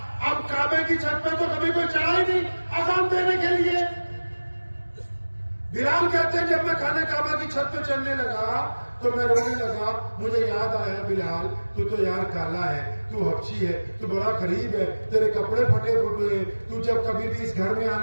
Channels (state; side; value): inverted; both; correlation -1.00